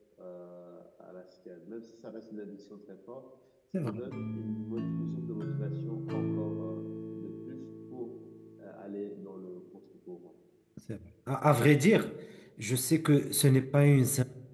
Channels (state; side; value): identical; both; correlation 1.00